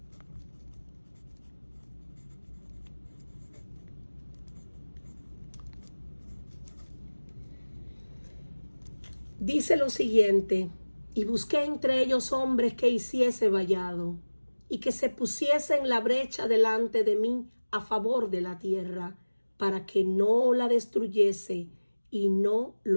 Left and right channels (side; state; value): both; inverted; correlation -1.00